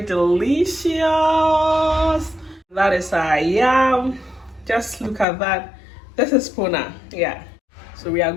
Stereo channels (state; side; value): drops out; right; at 5.2 s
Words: delicious. That is our yam. Just look at that. This is puna. Yeah. So we are